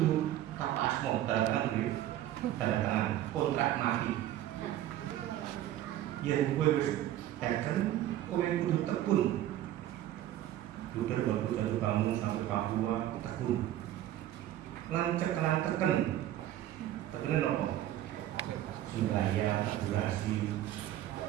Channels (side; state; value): left; quieter; 13.1 dB